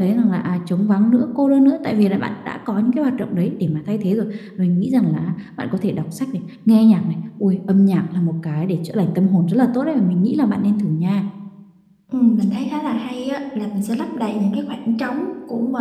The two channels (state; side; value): identical; both; correlation 1.00